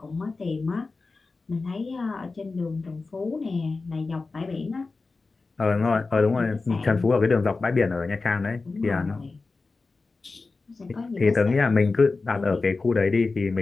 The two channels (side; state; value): right; quieter; 3.9 dB